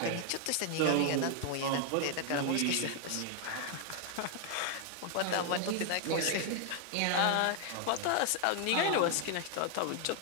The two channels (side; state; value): both; different; correlation 0.00